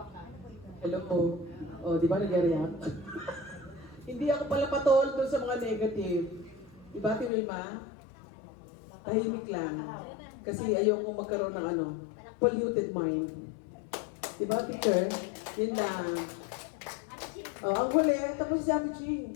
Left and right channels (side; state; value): right; drops out; at 7.3 s